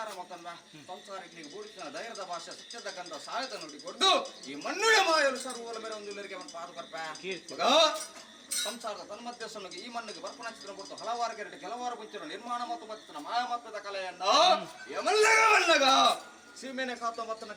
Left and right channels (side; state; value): both; identical; correlation 1.00